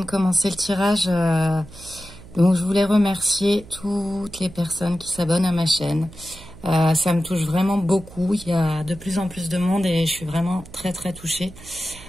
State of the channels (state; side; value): noise; right; hum, 19 dB below the sound